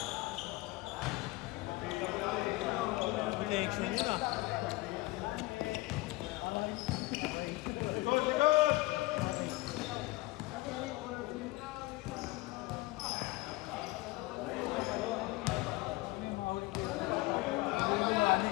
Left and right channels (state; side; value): quieter; right; 20.1 dB